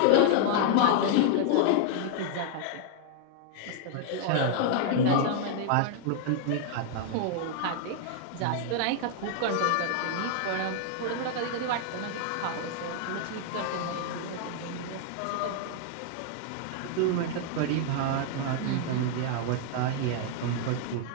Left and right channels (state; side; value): different; both; correlation 0.00